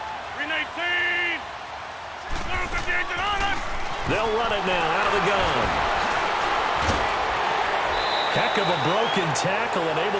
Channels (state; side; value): identical; both; correlation 1.00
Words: They'll run it now out of the gun. Heck of a broken tackle and